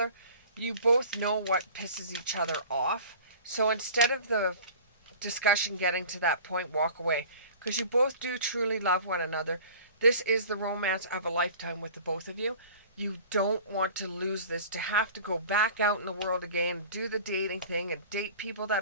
you both know what pisses each other off. So instead of the discussion getting to that point, walk away. Because you both do truly love one another. This is the romance of a lifetime with the both of you. You don't want to lose this, to have to go back out in the world again, do the dating thing and date people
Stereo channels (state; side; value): inverted; both; correlation -0.42